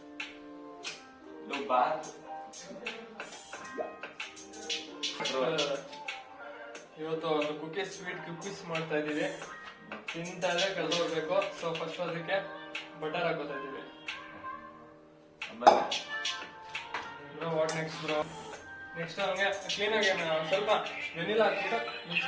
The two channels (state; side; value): identical; both; correlation 1.00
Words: ಇವತ್ತು ಒಂದು ಕುಕೀಸ್, ಸ್ವೀಟ್ ಕುಕೀಸ್ ಮಾಡ್ತಾ ಇದೀವಿ. ತಿಂತಾದ್ರೆ ಕಳ್ದೋಗ್ಬೇಕು. ಸೊ ಫಸ್ಟ್ ಅದಕ್ಕೆ ಬಟರ್ ಹಾಕೋತಾ ಇದೀವಿ. What next bro? ನೆಕ್ಸ್ಟ್ ಹಂಗೆ ಕ್ಲೀನ್ ಆಗಿ ಸ್ವಲ್ಪ ವೆನಿಲಾ ಹಾಕ್ಬಿಟ್ಟು